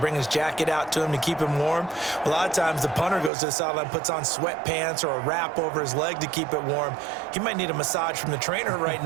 his jacket out to him to keep him warm? A lot of times the punter goes to the sideline, puts on sweatpants or a wrap over his leg to keep it warm. He might need a massage from the trainer right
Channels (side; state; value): left; drops out; at 3.3 s